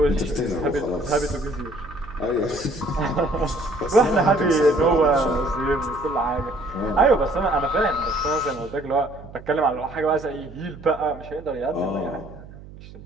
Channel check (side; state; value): right; noise; hum, 17 dB below the sound